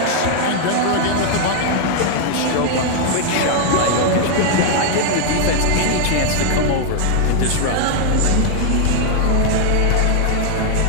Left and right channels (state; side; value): different; both; correlation 0.00